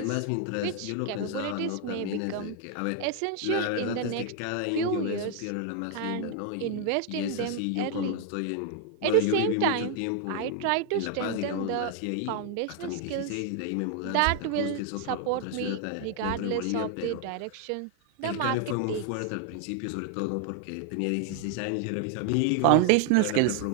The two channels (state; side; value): different; both; correlation 0.00